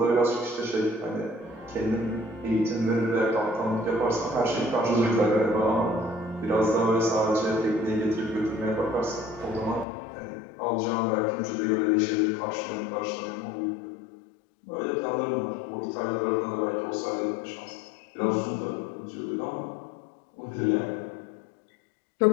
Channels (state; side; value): drops out; right; at 9.9 s